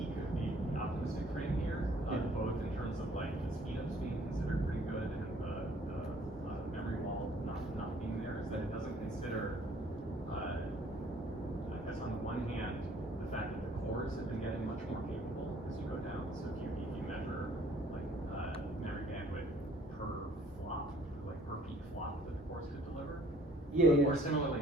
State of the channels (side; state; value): both; normal; correlation 0.58